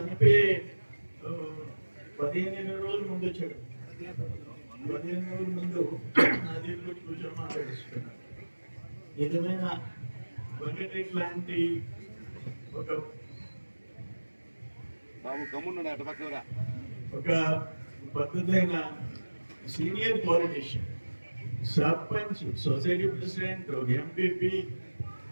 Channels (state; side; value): inverted; both; correlation -1.00